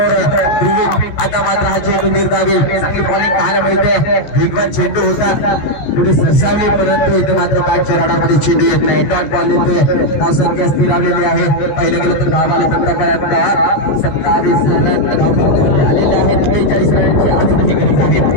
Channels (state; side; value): late; right; 14 ms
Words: ध्रुवी आता मात्र हा चेंडू निर्धावी चांगली बॉलिंग पाहायला मिळते. वेगवान चेंडू होता, पुढे सरसावली, परंतु इथे मात्र बॅटच्या राडामध्ये चेंडू येत नाही. डॉट बॉल येतोय, धावसंख्या स्थिरावलेली आहे. पहिलं गेलं तर धाव आले आतापर्यंत 27 रन धाव आलेले आहेत. 43 रनची आजही गरज आहे.